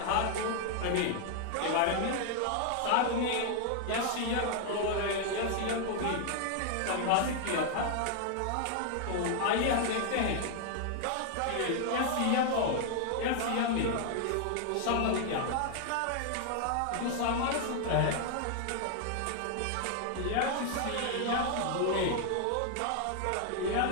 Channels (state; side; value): different; both; correlation 0.00